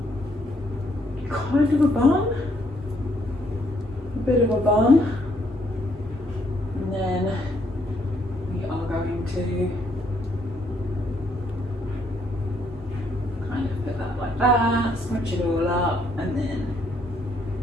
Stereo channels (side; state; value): both; normal; correlation 0.71